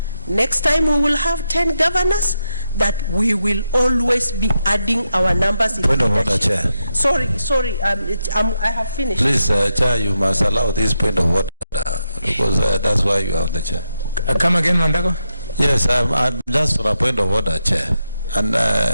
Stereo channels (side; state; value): both; inverted; correlation -0.85